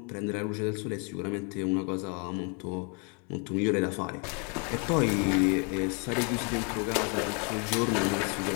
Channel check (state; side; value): quieter; right; 35.8 dB